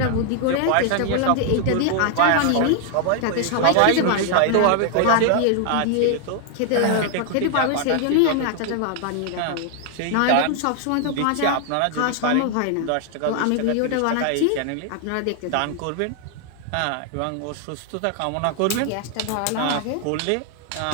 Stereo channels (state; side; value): different; both; correlation 0.00